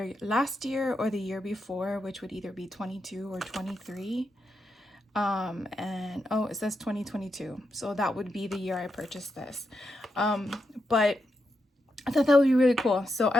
last year or the year before, which would either be 22 or 23. And oh, it says 2022, so that would be the year I purchased this. But I thought that would be really cool, so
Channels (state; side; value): normal; both; correlation 0.85